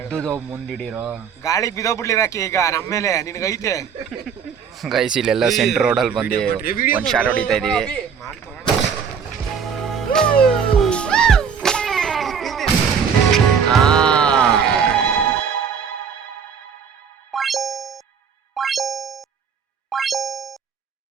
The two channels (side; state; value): left; quieter; 6.8 dB